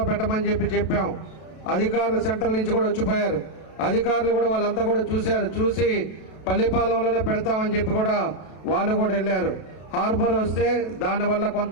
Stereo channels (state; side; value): late; right; 32 ms